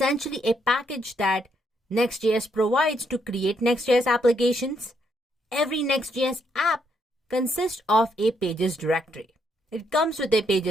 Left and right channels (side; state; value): both; normal; correlation 0.75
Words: a package that Next.js provides to create Next.js applications. Every Next.js app consists of a pages directory. It comes with a